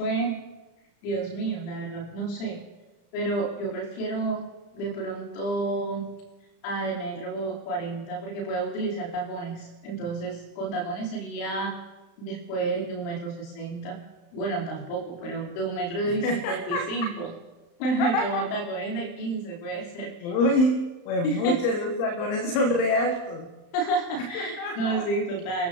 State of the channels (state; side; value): late; right; 35 ms